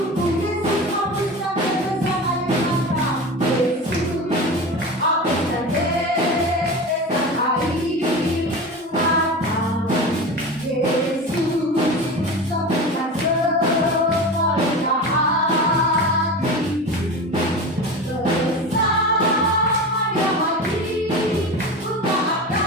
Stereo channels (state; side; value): normal; both; correlation 0.29